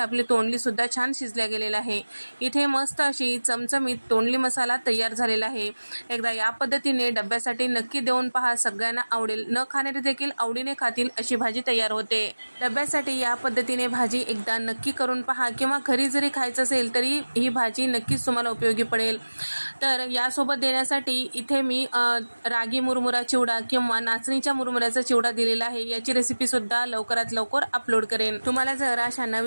तोंडली सुद्धा छान शिजल्या गेलेला आहे। इथे मस्त अशी चमचमीत तोंडली मसाला तयार झालेला आहे। एकदा या पद्धतीने डब्यासाठी नक्की देऊन पहा, सगळ्यांना आवडेल, न खाणारे देखील आवडीने खातील अशी भाजी तयार होते। डब्यासाठी या पद्धतीने भाजी एकदा नक्की करून पहा, किंवा घरी जरी खायचं असेल तरी ही भाजी नक्कीच तुम्हाला उपयोगी पडेल। तर यासोबत देण्यासाठी इथे मी रागी मुरमुरा चिवडा किंवा नाचणीच्या मुरमुऱ्याचा चिवडा दिलेला आहे। याची रेसिपी सुद्धा लवकरात लवकर अपलोड करेन। तुम्हाला जर अशा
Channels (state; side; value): inverted; both; correlation -1.00